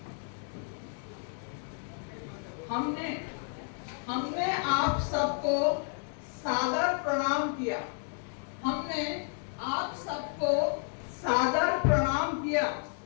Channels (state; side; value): silent; right; 57 dB below the other